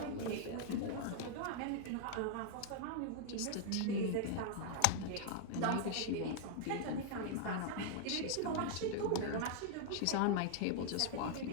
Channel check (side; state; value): both; different; correlation 0.00